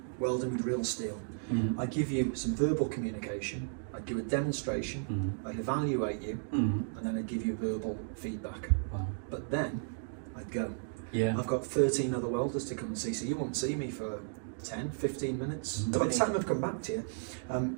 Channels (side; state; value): left; silent; digital silence